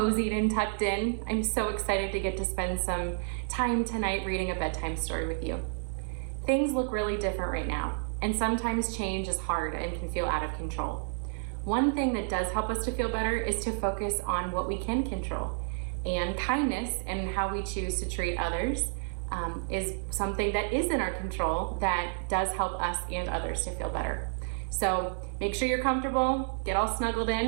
and tucked in. I'm so excited to get to spend some time tonight reading a bedtime story with you. Things look really different right now, and sometimes change is hard and can feel out of control. One thing that does help us to feel better is to focus on what we can control. And kindness and how we choose to treat others is something that is in our control that does help us and others to feel better. So make sure you're comfortable, get all snuggled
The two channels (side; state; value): left; silent; digital silence